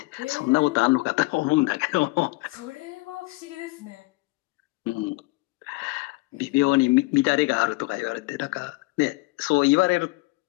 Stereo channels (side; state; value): right; quieter; 23.8 dB